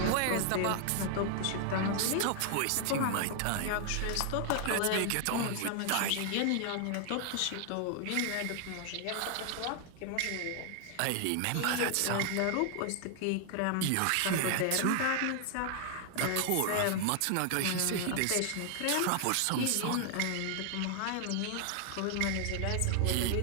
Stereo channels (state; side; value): different; both; correlation 0.00